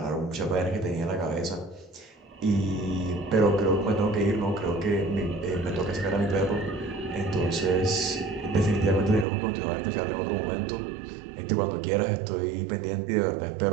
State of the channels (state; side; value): drops out; left; at 9.2 s